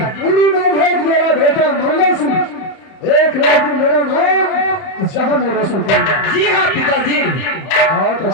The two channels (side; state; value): right; late; 31 ms